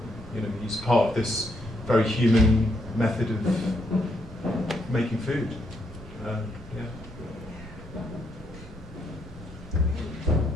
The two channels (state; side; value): normal; both; correlation 0.76